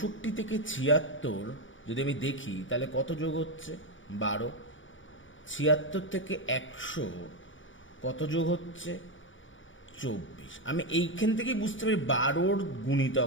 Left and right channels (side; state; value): right; late; 0.56 ms